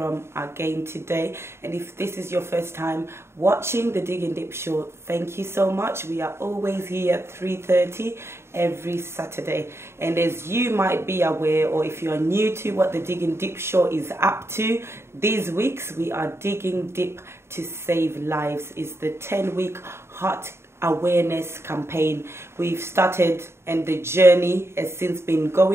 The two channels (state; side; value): late; left; 0.12 ms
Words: again today. And if this is your first time watching the Digging Deep Show, thank you so much. We are always here at 3:30 every Saturday. And as you might be aware, or if you are new to what the Digging Deep Show is up to, these weeks we are digging deep to save lives. It's the 10-week heart awareness campaign we've started, and the journey has since been